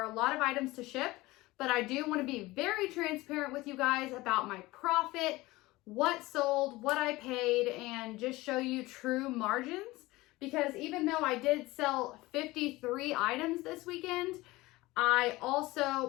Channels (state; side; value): quieter; right; 19.9 dB